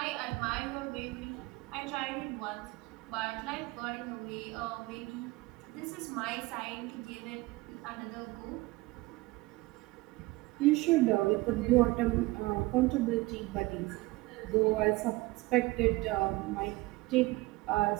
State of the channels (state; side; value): quieter; left; 20.8 dB